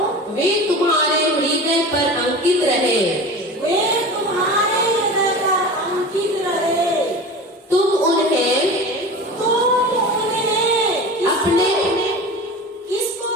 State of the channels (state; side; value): normal; both; correlation 0.33